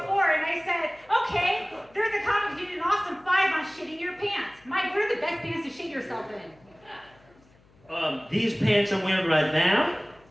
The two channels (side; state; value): left; noise; hum, 29 dB below the sound